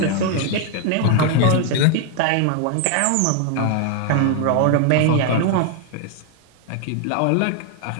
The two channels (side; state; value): both; different; correlation 0.01